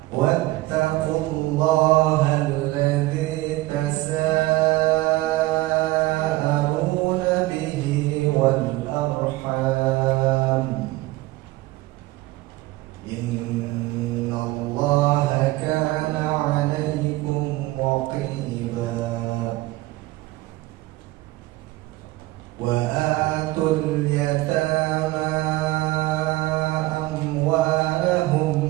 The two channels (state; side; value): quieter; left; 18.8 dB